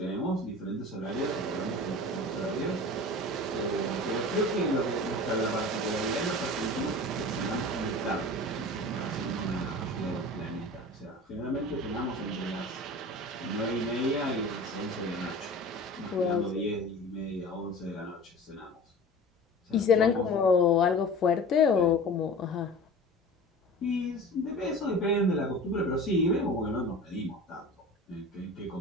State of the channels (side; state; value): both; normal; correlation 0.37